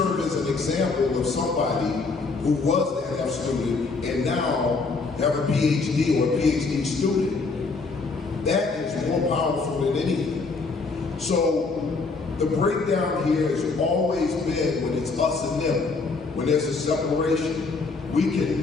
as an example of somebody who was that F student and now have a PhD or a PhD student, that is more powerful than anything. So the breakdown here has always been when it's us and them, when there's a separation. We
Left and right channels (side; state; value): right; quieter; 4.1 dB